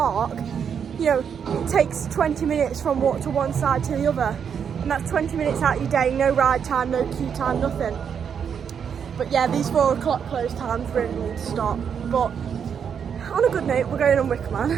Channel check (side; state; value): left; quieter; 7.4 dB